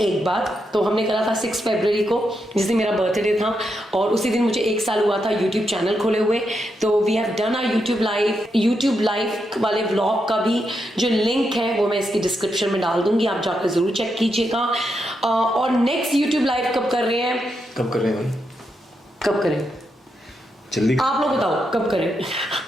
बार. तो हमने करा था 6 फरवरी को, जिस दिन मेरा बर्थडे था, और उसी दिन मुझे 1 साल हुआ था यूट्यूब चैनल खोले हुए. तो we have done our YouTube live वाले व्लॉग का भी जो लिंक है वो मैं इसकी डिस्क्रिप्शन में डाल दूंगी, आप जाकर जरूर चेक कीजिएगा. और नेक्स्ट यूट्यूब लाइव कब कर रहे हैं जल्दी आप लोग बताओ कब करें.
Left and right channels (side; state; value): both; normal; correlation 0.83